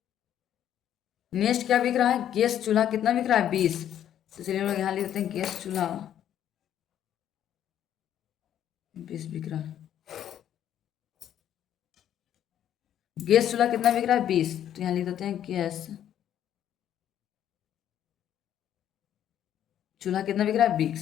नेक्स्ट क्या बिक रहा है? गैस चूल्हा। कितना बिक रहा है? 20। तो चलिए हम लोग यहाँ लिख देते हैं गैस चूल्हा 20 बिक रहा है। गैस चूल्हा कितना बिक रहा है? 20। तो यहाँ लिख देते हैं गैस चूल्हा कितना बिक रहा है?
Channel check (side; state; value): right; quieter; 10.5 dB